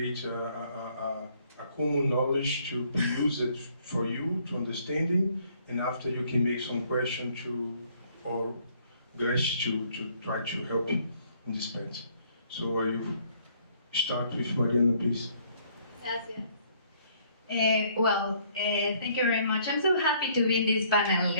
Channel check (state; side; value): inverted; both; correlation -0.64